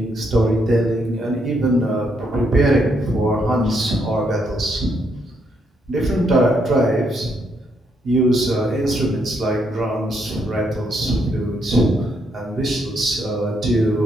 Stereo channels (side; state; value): both; normal; correlation 0.75